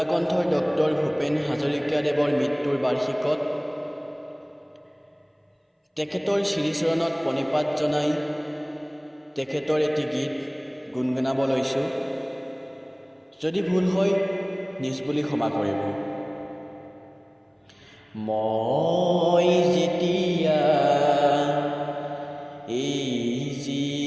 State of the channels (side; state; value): both; identical; correlation 1.00